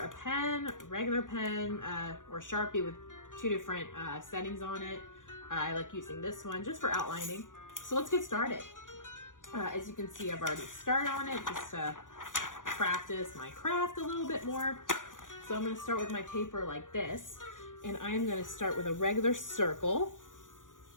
pen, regular pen, or Sharpie with 2 different settings on it. I like using this one just for outlining. So let's get started. As you can see, I've already started on it just to practice my craft a little bit more. So I'm going to start with my paper like this, and I'm going to start with a regular circle.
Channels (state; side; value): late; right; 0.88 ms